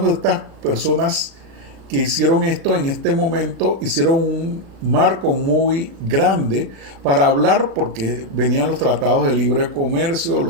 de estas personas que hicieron esto en este momento hicieron un marco muy grande para hablar, porque venían los tratados de libre comercio,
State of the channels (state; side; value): late; left; 36 ms